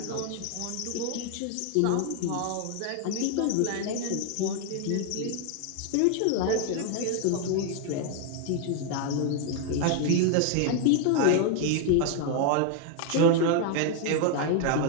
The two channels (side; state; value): both; different; correlation 0.01